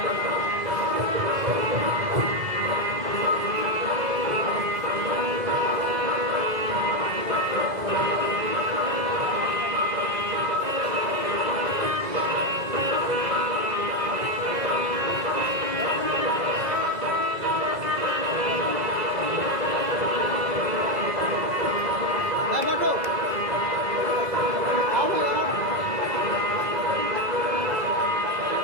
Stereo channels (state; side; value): late; left; 2.0 ms